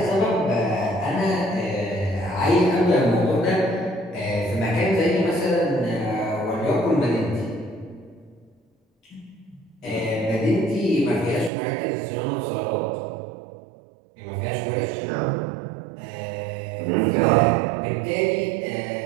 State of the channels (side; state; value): left; drops out; at 11.5 s